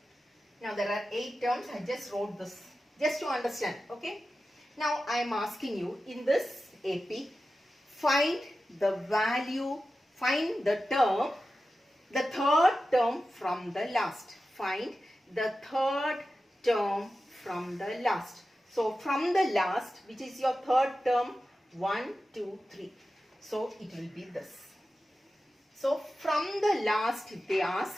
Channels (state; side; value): normal; both; correlation 0.93